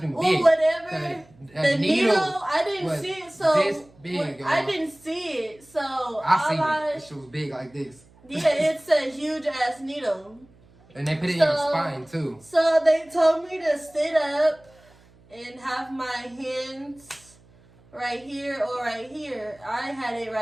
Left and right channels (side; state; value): right; noise; hum, 28 dB below the sound